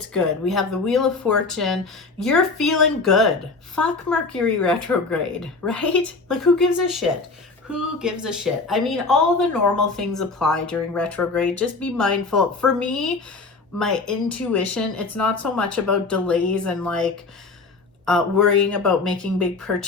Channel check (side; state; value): right; quieter; 3.9 dB